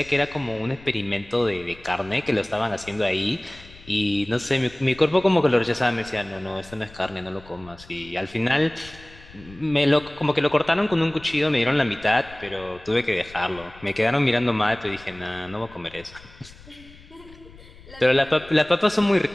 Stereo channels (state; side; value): noise; left; rumble, 21 dB below the sound